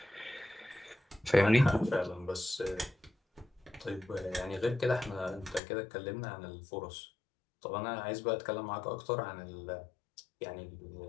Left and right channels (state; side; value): drops out; right; at 5.6 s